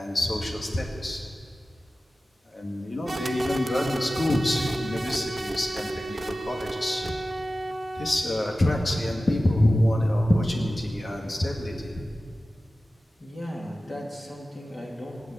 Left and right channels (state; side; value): normal; both; correlation 0.95